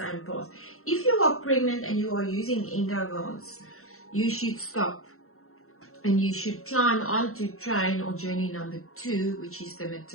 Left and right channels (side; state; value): right; late; 0.63 ms